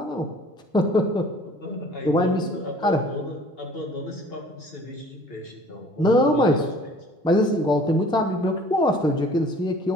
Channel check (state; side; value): normal; both; correlation 0.51